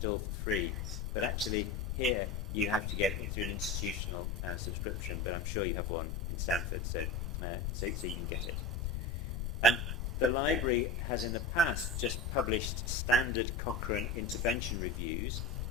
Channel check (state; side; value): noise; left; rumble, 2 dB below the sound